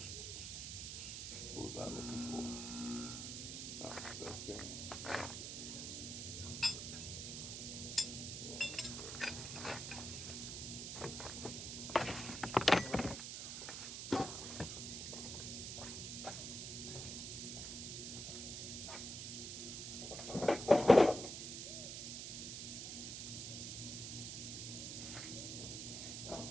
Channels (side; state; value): right; noise; hiss, 5 dB below the sound